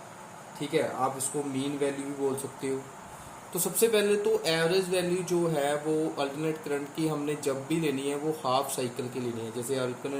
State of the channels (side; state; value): both; identical; correlation 1.00